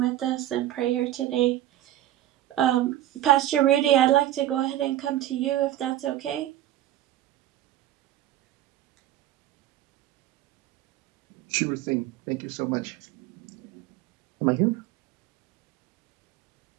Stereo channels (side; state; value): left; quieter; 13.4 dB